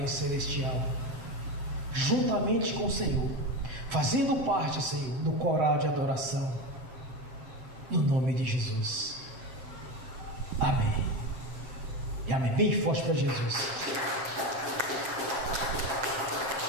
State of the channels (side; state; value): left; late; 7.4 ms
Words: Celestial, juntamente com o Senhor, fazendo parte, Senhor, do coral de adoração, no nome de Jesus. Amém. E amém. Bem forte para Jesus.